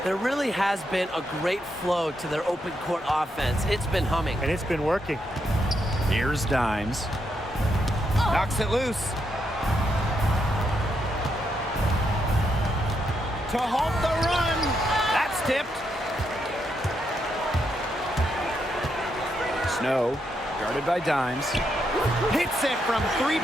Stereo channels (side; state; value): both; normal; correlation 0.80